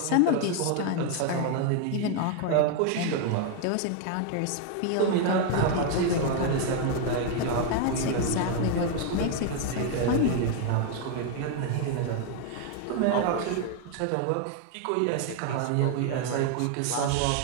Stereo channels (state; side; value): different; both; correlation 0.00